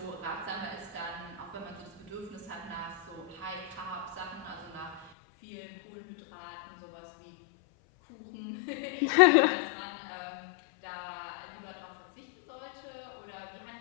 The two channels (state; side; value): drops out; right; at 5.1 s